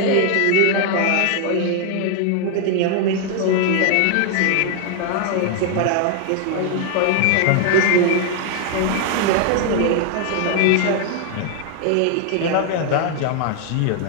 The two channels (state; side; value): different; both; correlation 0.00